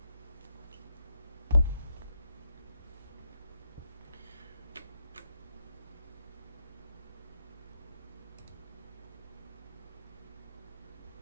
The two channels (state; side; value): inverted; both; correlation -0.79